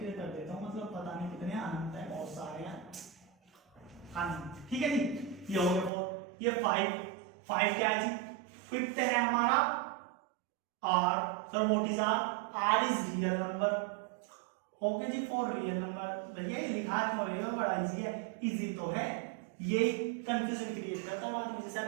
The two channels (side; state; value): left; drops out; at 5.9 s